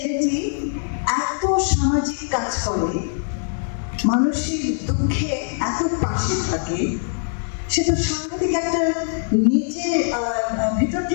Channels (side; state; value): right; silent; 62 dB below the other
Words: এত সামাজিক কাজ করে, মানুষের দুঃখে এত পাশে থাকে, সে তো সাংঘাতিক একটা নিজে ভেতর